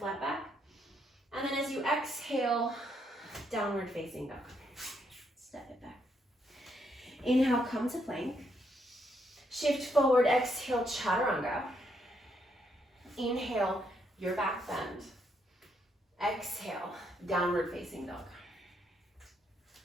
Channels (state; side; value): normal; both; correlation 0.75